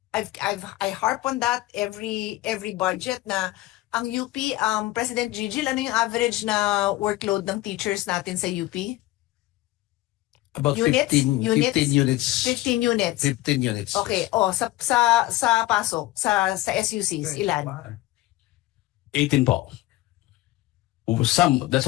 I harp on that every budget na ang UP, President Gigil, ano yung average na workload ng teachers natin sa UP? About Units? 15 units. 15 units. 15 units. Okay. Sa pasok, sa SUCs, ilan? 18 po. That's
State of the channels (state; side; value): quieter; right; 17.6 dB